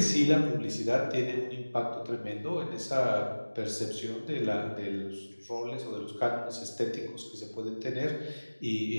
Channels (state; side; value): inverted; both; correlation -1.00